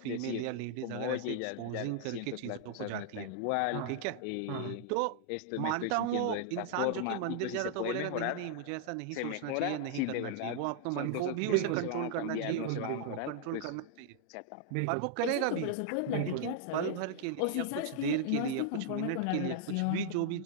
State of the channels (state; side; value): different; both; correlation -0.01